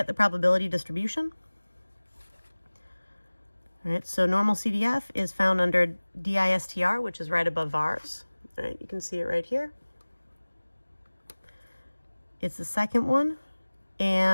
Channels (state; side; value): inverted; both; correlation -1.00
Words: probability distribution. All right, so normal CDF is found under DISTR, which is right above VARS. All right, you can see it right here. It's the second one,